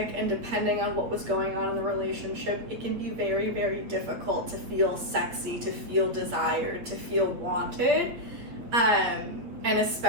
and depending on what was going on in the relationship, it can be very, very difficult to feel sexy, to feel desired, to feel wanted, and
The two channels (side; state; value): left; late; 8.6 ms